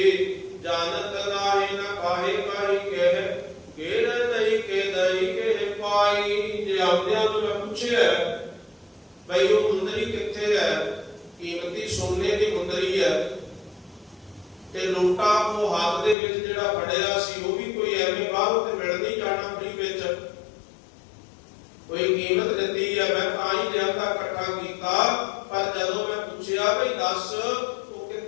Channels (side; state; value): right; drops out; at 16.2 s